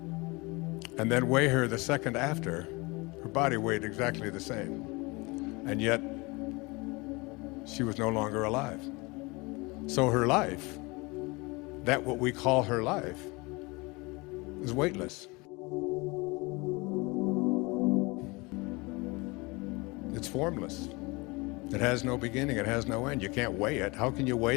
and then weigh her the second after, her body weighed exactly the same. And yet, she was no longer alive. So her life, that what we call her life, is weightless. It's formless. It has no beginning, it has no end. You can't weigh it. How can you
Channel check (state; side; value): quieter; right; 25.6 dB